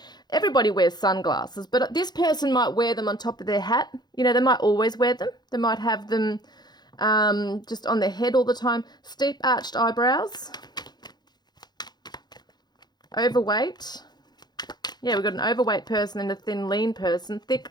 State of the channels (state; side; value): late; right; 0.20 ms